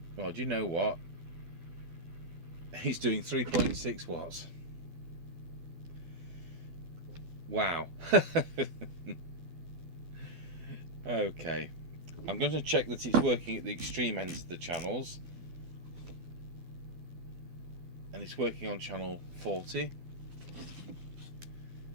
Well, do you know what? He's doing 3.6 watts. Wow. Okay. I'm going to check that it's working at the extreme ends of the channels. And it's working on channel 40.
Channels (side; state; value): left; late; 12 ms